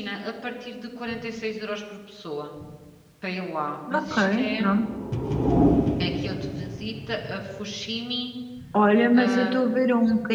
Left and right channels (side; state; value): both; identical; correlation 1.00